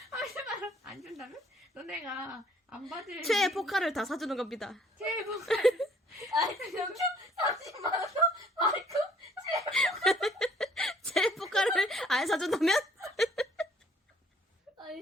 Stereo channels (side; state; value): both; normal; correlation 0.59